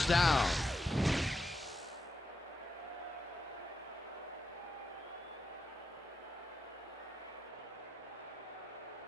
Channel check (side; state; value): both; normal; correlation 0.84